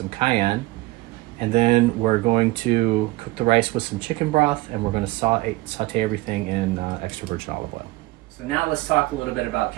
cayenne. And then we're going to cook the rice with some chicken broth, and we're going to saute everything in extra virgin olive oil. So now let's talk a little bit about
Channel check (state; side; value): quieter; left; 20.7 dB